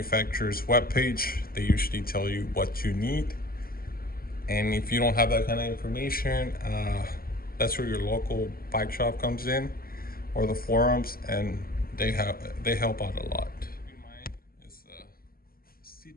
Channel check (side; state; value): right; late; 0.43 ms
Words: webpage, they usually tell you what you need. And if you don't have that kind of information, that's where your local bike shop comes in, or the forums, and they help out a lot. Keep in mind is